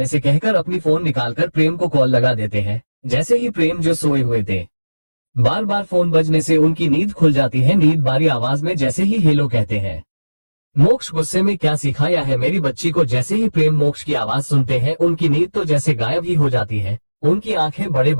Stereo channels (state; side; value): inverted; both; correlation -1.00